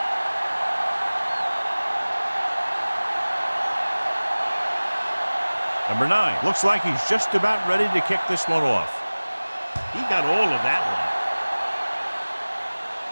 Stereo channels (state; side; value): inverted; both; correlation -1.00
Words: Number 9. Looks like he's just about ready to kick this one off. He got all of that one.